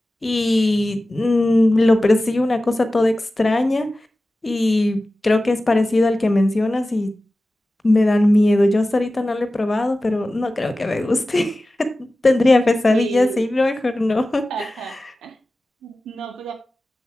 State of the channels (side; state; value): both; normal; correlation 0.96